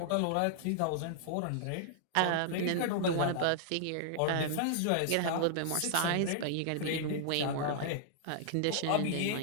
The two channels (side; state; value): both; different; correlation -0.01